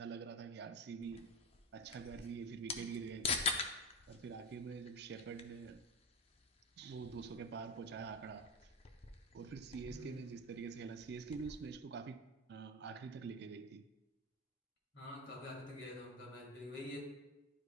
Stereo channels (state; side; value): normal; both; correlation 0.20